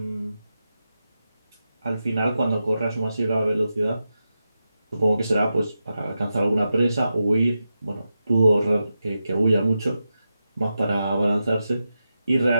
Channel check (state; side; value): inverted; both; correlation -0.89